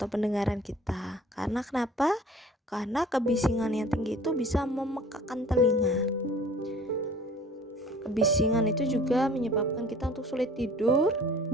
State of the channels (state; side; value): normal; both; correlation 0.48